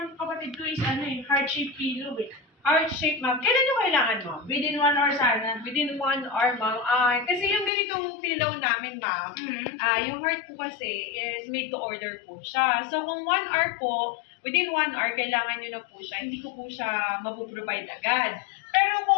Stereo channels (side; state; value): right; drops out; at 7.7 s